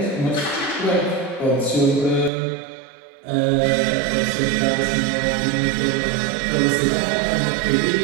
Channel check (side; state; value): left; drops out; at 2.3 s